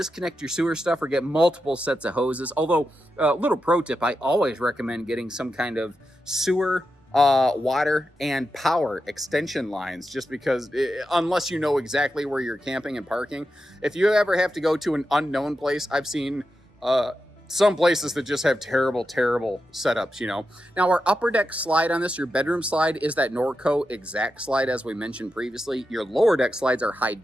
your sewer stuff or get multiple sets of hoses. Although, little pro tip, I always recommend getting some kind of sewer, water, and power extension lines, just because unless you know exactly where you're camping and parking, if you ever have to go to an unknown place, I've seen some places that just have terrible setups, Now, our upper deck slide on this, your bedroom slide, is that Norco exact slide, as we mentioned previously. Your lower deck slides are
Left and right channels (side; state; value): both; normal; correlation 0.89